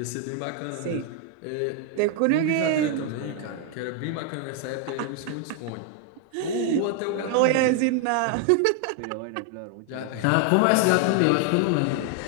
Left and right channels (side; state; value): both; different; correlation 0.00